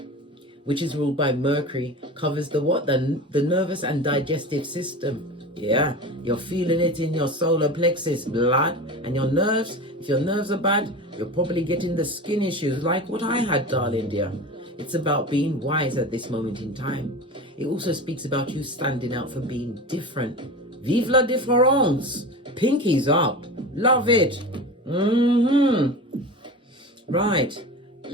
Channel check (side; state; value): both; normal; correlation 0.30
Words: which is ruled by Mercury, covers the what? The nervous and digestive system. Yeah, you're feeling it in your solar plexus, blood, and your nerves. If your nerves are bad, you're probably getting the skin issues like what I had, darling dear. It's about being wise at this moment in time. It also speaks about you standing out for being different. Vive la différence. Pinkies up. Love it. Right.